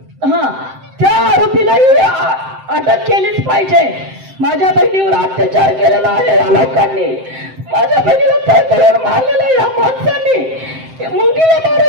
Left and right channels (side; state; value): left; late; 7.7 ms